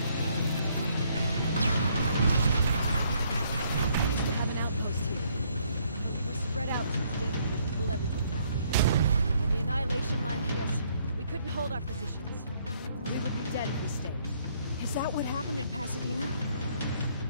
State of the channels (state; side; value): inverted; both; correlation -0.67